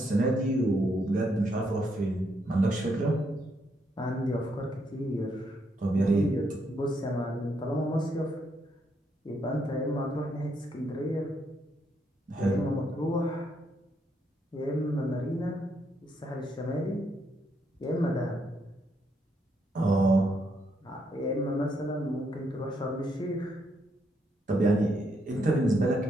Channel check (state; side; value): normal; both; correlation 0.76